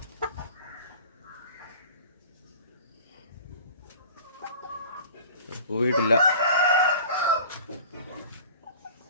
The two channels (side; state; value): both; inverted; correlation -0.43